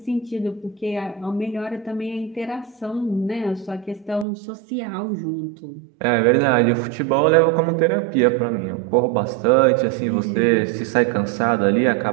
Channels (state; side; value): drops out; left; at 4.2 s